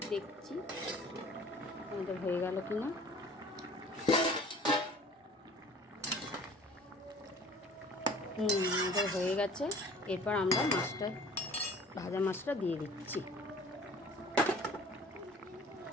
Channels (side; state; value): both; normal; correlation 0.48